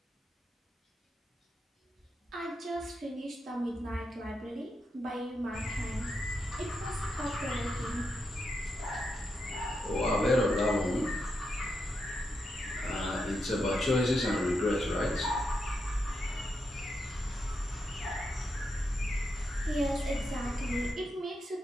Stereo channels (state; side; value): normal; both; correlation 0.84